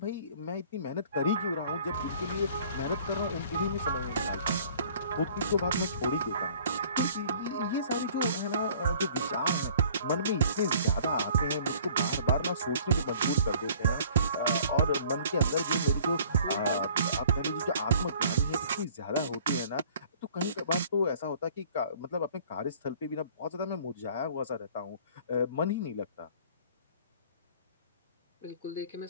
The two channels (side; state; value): both; inverted; correlation -0.52